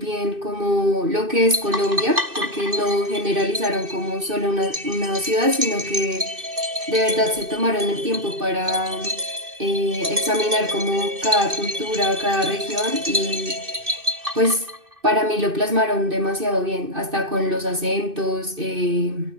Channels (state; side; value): late; left; 2.6 ms